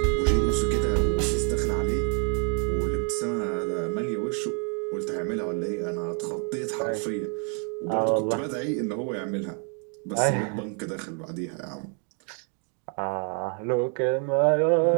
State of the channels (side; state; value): left; quieter; 38.0 dB